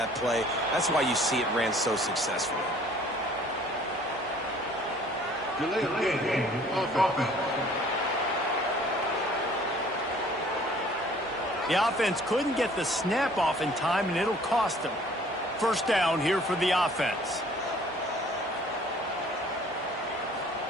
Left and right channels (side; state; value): both; normal; correlation 0.54